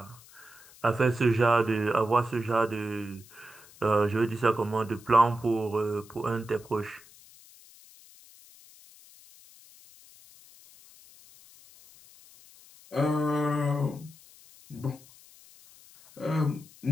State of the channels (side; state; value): left; noise; hiss, 23 dB below the sound